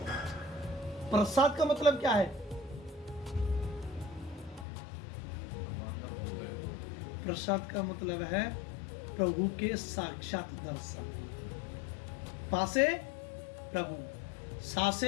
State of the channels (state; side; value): drops out; right; at 4.7 s